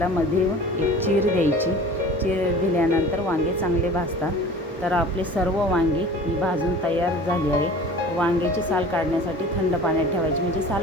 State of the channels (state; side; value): normal; both; correlation 0.41